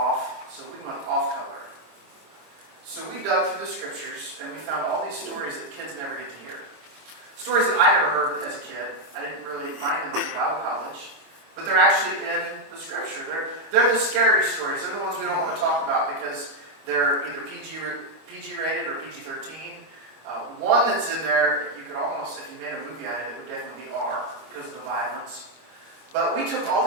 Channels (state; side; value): late; left; 25 ms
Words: So we went off color. So we dug through the scriptures, and we found all these stories that kids never get to hear. Stories that I never heard as a kid. I didn't really find them at the Bible college. But they're actually in the scripture. They're the scary stories. They're the ones we don't want to talk about because they're either PG rated or PG-13. One that's in there, you could almost, if you made a movie out of it, would definitely be R because of the violence. But we took all